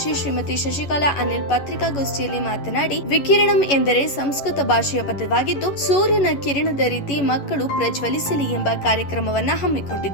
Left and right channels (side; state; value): right; late; 11 ms